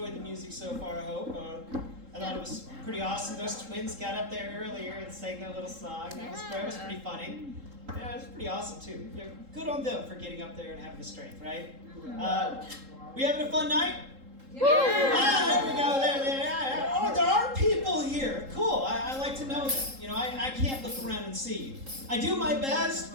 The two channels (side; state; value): left; late; 3.7 ms